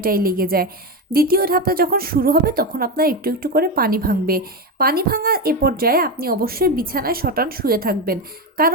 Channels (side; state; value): both; normal; correlation 0.13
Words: লেগে যায়। দ্বিতীয় ধাপটা যখন শুরু হবে তখন আপনার একটু একটু করে পানি ভাঙবে। পানি ভাঙা এ পর্যায়ে আপনি অবশ্যই বিছানায় শটান শুয়ে থাকবেন,